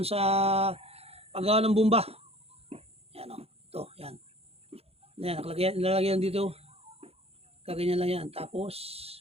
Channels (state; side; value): late; left; 0.29 ms